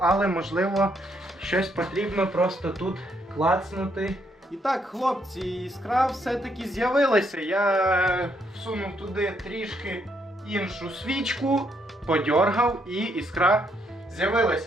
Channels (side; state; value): both; normal; correlation 0.74